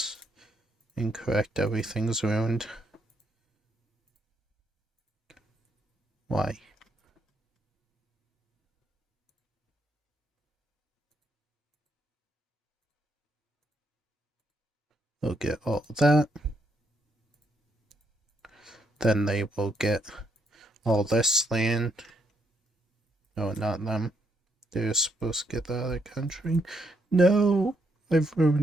Incorrect, everything's ruined. Why? They'll get all that. Then they will get all this land. No, not them. They're supposed to get the other country. No, I've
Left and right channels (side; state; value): both; normal; correlation 0.75